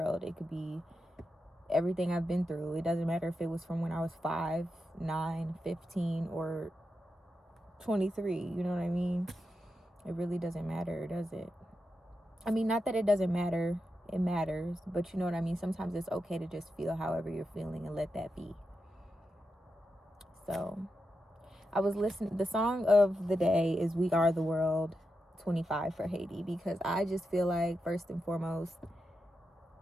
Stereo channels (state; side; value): normal; both; correlation 0.88